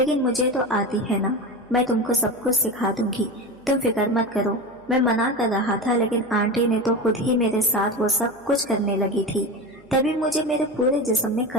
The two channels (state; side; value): noise; right; hum, 28 dB below the sound